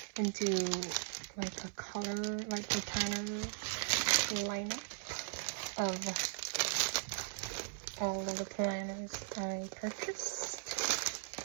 and do like a color, like the planner lineup of all of the planners I purchased.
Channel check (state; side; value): silent; left; 52 dB below the other